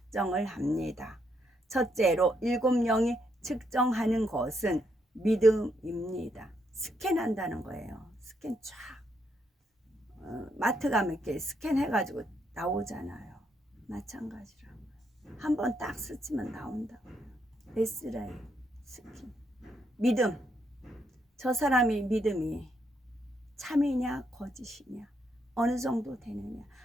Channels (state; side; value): normal; both; correlation 0.77